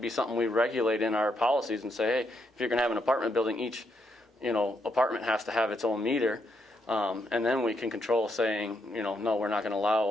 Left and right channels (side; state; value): both; normal; correlation 0.78